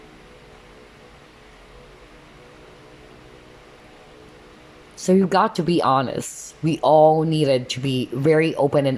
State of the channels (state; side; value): identical; both; correlation 1.00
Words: So you got to be honest. We all needed to be very open and